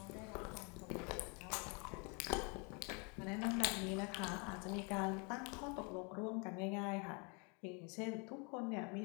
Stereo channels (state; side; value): quieter; right; 33.3 dB